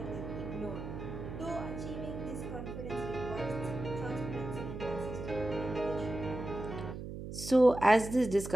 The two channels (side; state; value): right; noise; hum, 8 dB below the sound